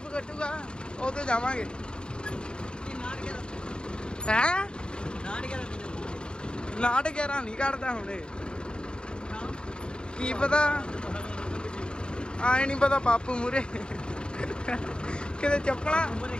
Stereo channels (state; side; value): late; right; 0.050 ms